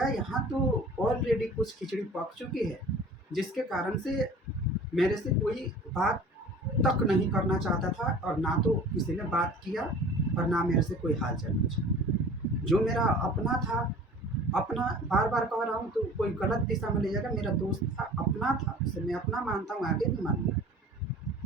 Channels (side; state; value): both; normal; correlation 0.44